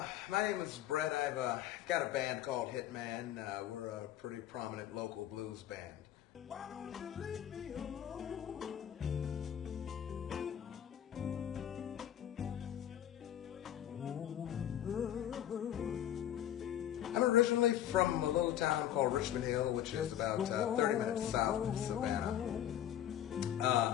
name is Brett. I've got a band called Hitman. We're a pretty prominent local blues band. Why don't you leave me alone? I'm originally from a little town called Richmond Hill, which is about 30 minutes south of Savannah.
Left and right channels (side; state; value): right; quieter; 11.1 dB